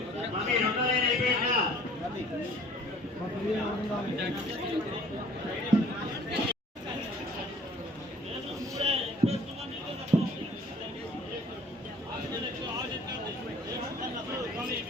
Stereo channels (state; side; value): normal; both; correlation 0.52